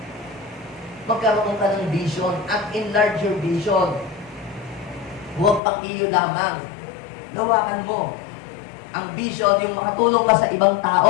Magkaroon ka ng vision at enlarge your vision. Huwag pang iyo lamang. Gawakan mo. Ang vision, yung makatulong ka sa ibang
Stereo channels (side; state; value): right; drops out; at 5.6 s